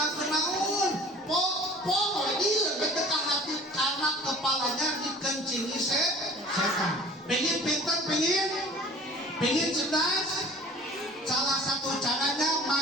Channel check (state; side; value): normal; both; correlation 0.46